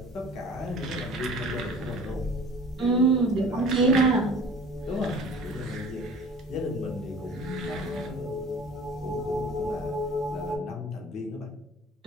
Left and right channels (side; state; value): both; normal; correlation 0.45